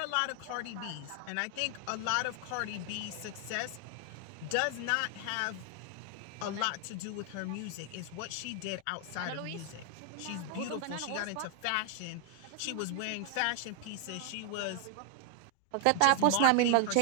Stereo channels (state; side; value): different; both; correlation 0.00